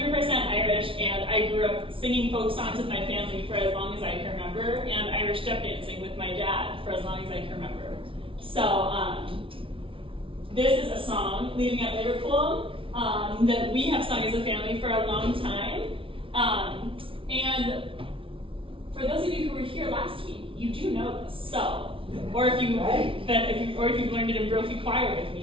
Irish, and I grew up singing folk songs with my family for as long as I can remember, and Irish step dancing with my dad for as long as I can remember. So this is a song, Leaving at Liverpool, that we have sung as a family for a long time. And for those of you who were here last week, you do know this. So, or if you've learned it in Brophy Choir with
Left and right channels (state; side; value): late; left; 0.25 ms